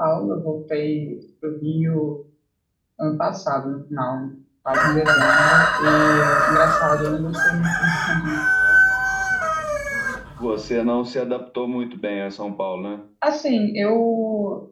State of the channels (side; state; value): both; identical; correlation 1.00